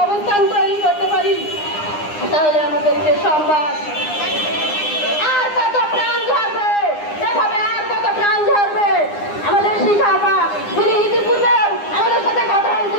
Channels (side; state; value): right; late; 9.8 ms